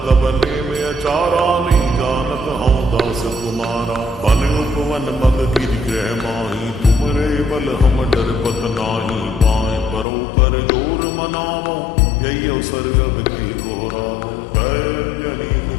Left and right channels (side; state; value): right; drops out; at 10.1 s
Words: तब में अचारा नहीं जानत हूँ दास तुम्हारा। बन उपवन मग गिर ग्रह माही तुमरे बल हम डर पत नाही। पाए परो कर जोर मनावो यही अवसर अब की घोरावो। जय अंजनी